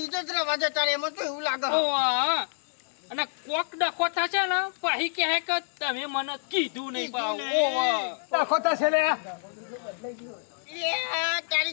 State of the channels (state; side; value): silent; right; digital silence